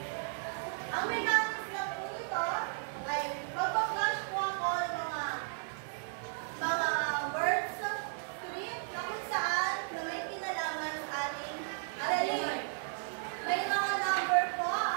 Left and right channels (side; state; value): left; silent; 55 dB below the other